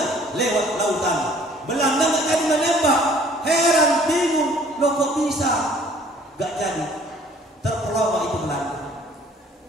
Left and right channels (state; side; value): normal; both; correlation 0.55